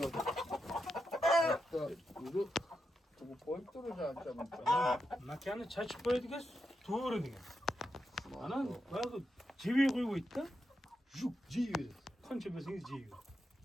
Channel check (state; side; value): normal; both; correlation 0.85